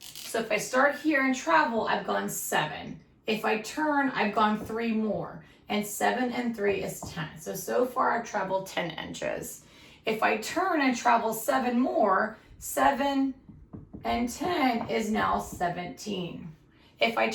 if I start here and travel, I've gone 7. If I turn, I've gone 3 more. And 7 and 3 is 10. So far I've traveled 10 inches. If I turn and travel 7 more, 7 and 10 is now 17. If I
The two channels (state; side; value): identical; both; correlation 1.00